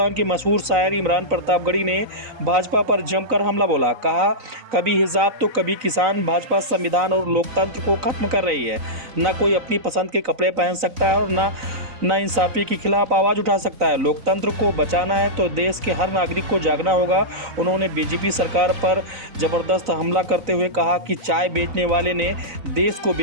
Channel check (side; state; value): left; late; 3.9 ms